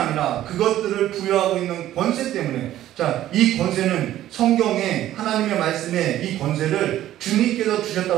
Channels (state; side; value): quieter; left; 13.2 dB